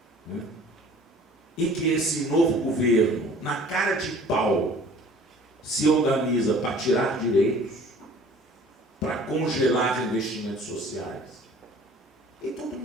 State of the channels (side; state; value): both; normal; correlation 0.49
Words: né? E que esse novo governo, na cara de pau, se organiza para tirar direitos, para congelar investimentos sociais. E todo